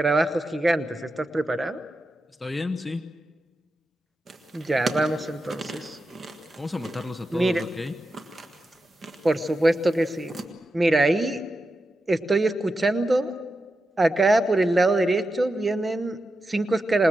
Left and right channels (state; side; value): normal; both; correlation 0.89